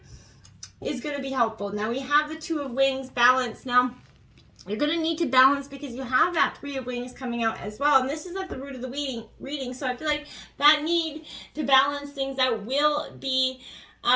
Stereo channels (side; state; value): both; identical; correlation 1.00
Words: is going to be helpful. Now we have the Two of Wings, balance. Now you're going to need to balance because you have that Three of Wings coming out as well. And this is at the root of the reading. So I feel like that need to balance things out will be